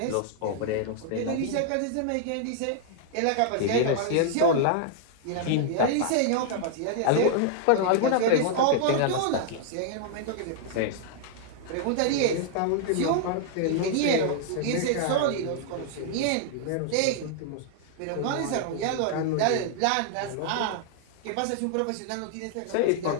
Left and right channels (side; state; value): both; different; correlation -0.01